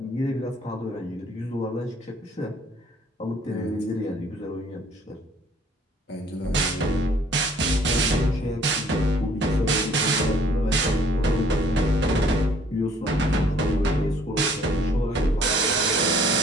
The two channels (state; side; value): normal; both; correlation 0.59